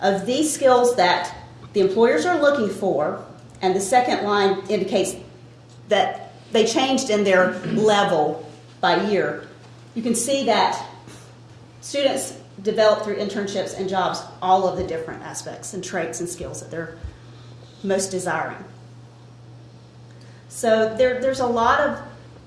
of these skills that the employers are looking for, and the second line indicates that they changed in their level by year, you can see that students develop through internships and jobs all of the different aspects and traits and skills that they're most desiring. So there's a lot of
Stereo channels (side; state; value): both; identical; correlation 1.00